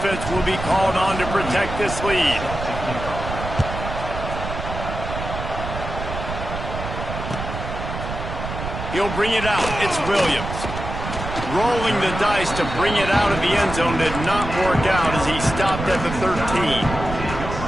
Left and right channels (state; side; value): noise; right; rumble, 7 dB below the sound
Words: will be called on to protect this lead. He'll bring it out. It's Williams. Rolling the dice to bring it out of the end zone did not work out as he stopped at the 13.